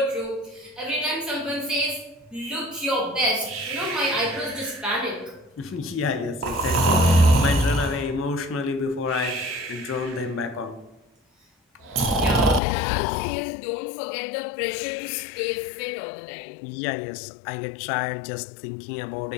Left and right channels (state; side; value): drops out; right; at 12.6 s